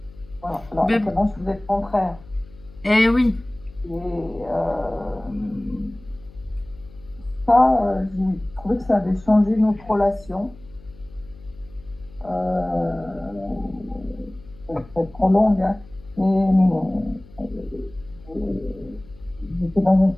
Voilà. Alors, Mais- maintenant, je vous êtes contraire. Eh oui. Et ça, j'ai trouvé que ça avait changé notre relation. Ça va être trop longue, hein. Mais j'étais dans un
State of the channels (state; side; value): noise; left; hum, 22 dB below the sound